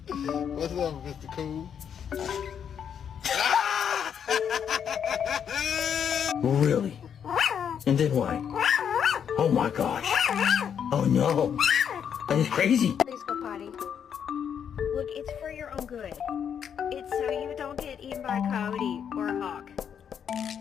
What's up, Mr. Cool? Really? And then what? Oh my gosh. Oh no. That is crazy. Please go potty. Look, it's for your own good. It's so you don't get eaten by a coyote or a hawk.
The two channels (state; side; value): quieter; right; 8.1 dB